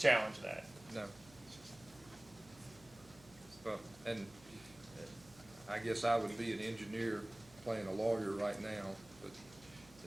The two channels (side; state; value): right; noise; hum, 23 dB below the sound